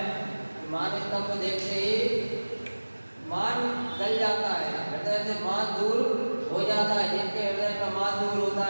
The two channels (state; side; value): inverted; both; correlation -1.00